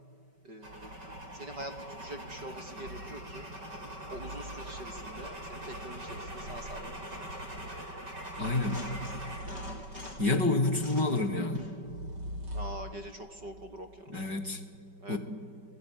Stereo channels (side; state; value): left; late; 5.2 ms